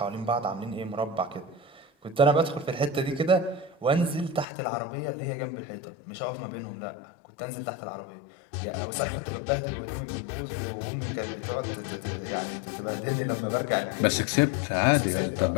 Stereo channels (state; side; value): drops out; right; at 4.5 s